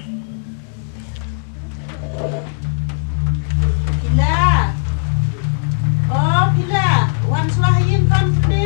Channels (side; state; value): right; silent; digital silence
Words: Pila. Pila. Wan selahin kan